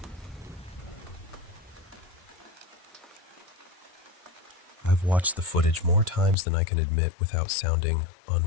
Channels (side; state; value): right; drops out; at 6.4 s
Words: I've watched the footage more times than I can admit without sounding